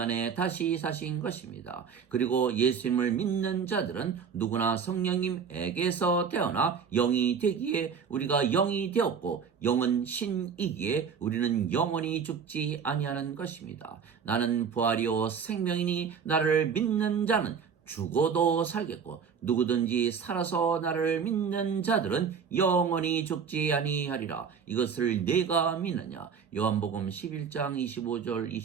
다시 사신 것입니다. 그리고 예수님을 믿는 자들은 누구나 성령님에게서 태어나 영이 되기에 우리가 영이 되었고 영은 신이기에 우리는 영원히 죽지 아니하는 것입니다. 나는 부활이요 생명이니 나를 믿는 자는 죽어도 살겠고 누구든지 살아서 나를 믿는 자들은 영원히 죽지 아니하리라. 이것을 내가 믿느냐. 요한복음 11장 25절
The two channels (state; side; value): quieter; left; 6.6 dB